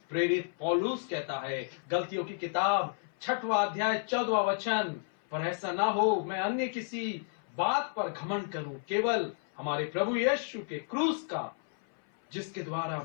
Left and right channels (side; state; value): right; silent; 57 dB below the other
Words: प्रेरित पौलुस कहता है गलतियों की किताब 6वां अध्याय 14वां वचन, पर ऐसा ना हो मैं अन्य किसी बात पर घमंड करूं, केवल हमारे प्रभु यीशु के क्रूस का, जिसके द्वारा